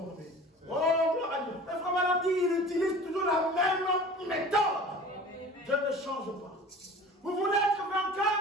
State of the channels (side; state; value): both; normal; correlation 0.42